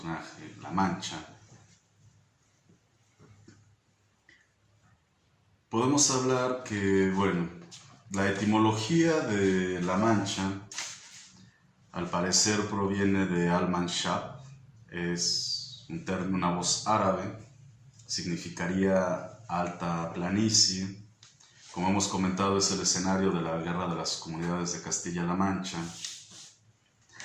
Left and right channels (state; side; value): identical; both; correlation 1.00